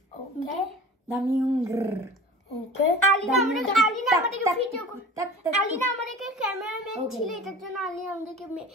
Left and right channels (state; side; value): normal; both; correlation 0.38